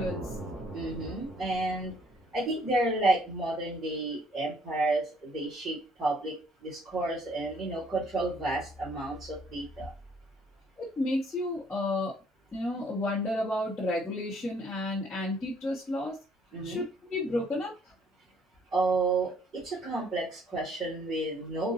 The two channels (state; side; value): normal; both; correlation 0.63